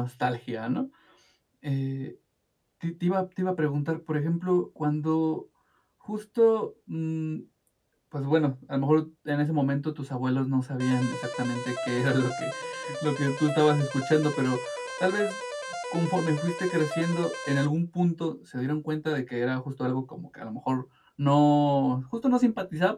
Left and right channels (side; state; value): both; identical; correlation 1.00